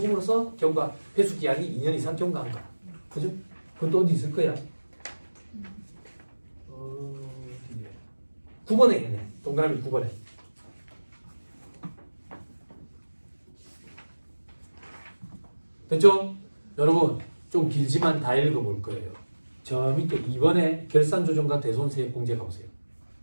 경과 회수 기한이 2년 이상 경과한 거. 그죠? 그건 또 어디 있을 거야? 9번에 있네. 동그라미 9번에. 됐죠? 여러분 좀 길지만 다 읽어볼 거예요. 저 밑에 2번에 결산조정과 대손세액 공제 가보세요.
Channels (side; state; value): both; inverted; correlation -1.00